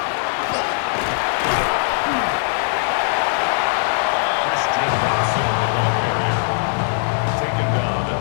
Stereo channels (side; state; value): right; silent; 66 dB below the other